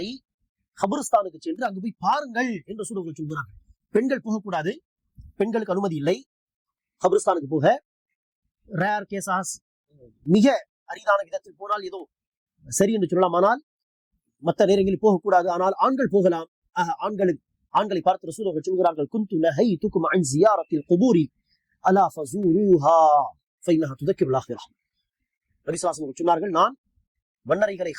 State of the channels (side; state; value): both; identical; correlation 1.00